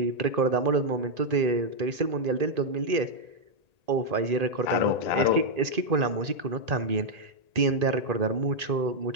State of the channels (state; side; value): late; left; 1.8 ms